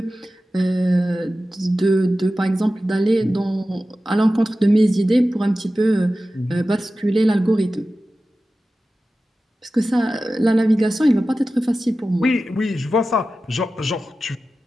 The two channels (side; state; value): both; normal; correlation 0.94